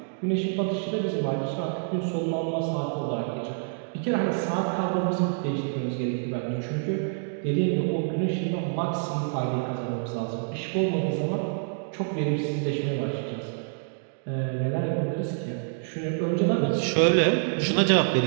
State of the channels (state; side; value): silent; left; digital silence